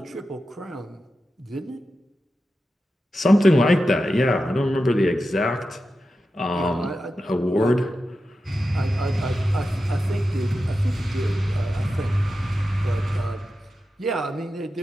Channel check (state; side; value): normal; both; correlation 0.91